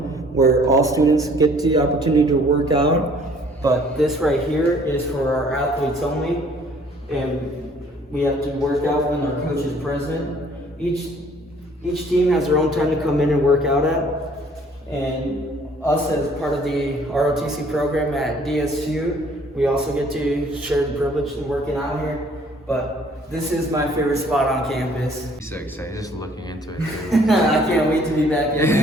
where all students get the opportunity to work out. But this right here is for our athletes only. And we have to work out when our coach is present. Each team has their own time to come in and work out at. And us as part of the ROTC program at DSU, we also get to share the privilege of working out here. But this is my favorite spot on campus. So excited, just looking into it. I can't wait to be back in.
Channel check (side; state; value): both; normal; correlation 0.58